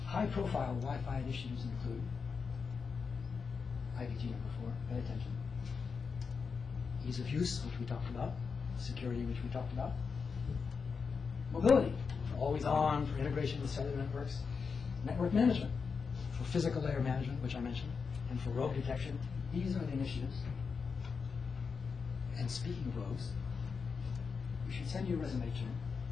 High-profile Wi-Fi initiatives include IVT number 4, pay attention. Ease of use, which we talked about. Security, which we talked about. Mobility, for always on, for integration with cellular networks. Network management, for physical layer management, which I mentioned, and for rogue detection. These are the initiatives. And speaking of rogues, we should send you a resume to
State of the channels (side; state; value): right; quieter; 5.4 dB